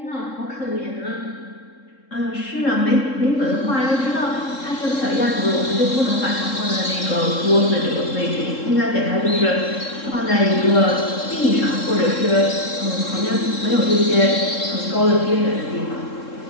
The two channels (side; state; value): right; late; 3.7 ms